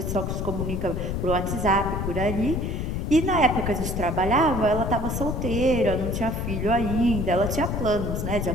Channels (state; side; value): noise; left; rumble, 2 dB below the sound